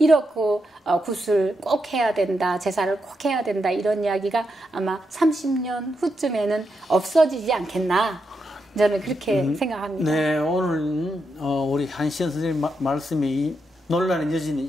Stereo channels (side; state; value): both; normal; correlation 0.83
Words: 굿을 꼭 해야 된다. 제사를 꼭 해야 된다. 이런 이야기가 아마 30년 후쯤에는 없어지지 않겠나. 저는 그렇게 생각합니다. 네, 오늘 우리 한시연 선생님 말씀이 논란의 여지는